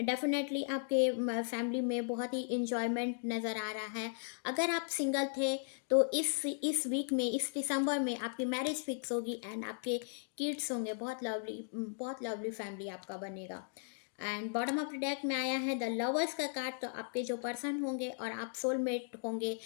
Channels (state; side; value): silent; right; digital silence